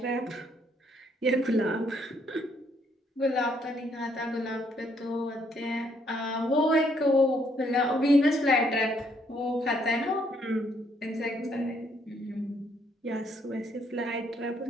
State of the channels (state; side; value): normal; both; correlation 0.69